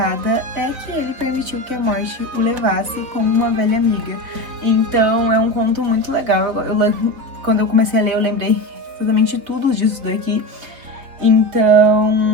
é que ele permitiu que a morte o levasse como uma velha amiga. Então é um conto muito legal. Quando eu comecei a ler, eu lembrei exatamente tudo disso daqui.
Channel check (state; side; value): late; left; 3.8 ms